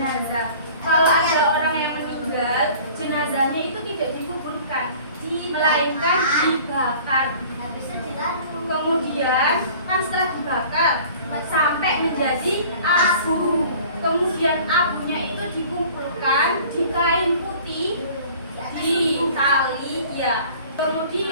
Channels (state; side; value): inverted; both; correlation -0.47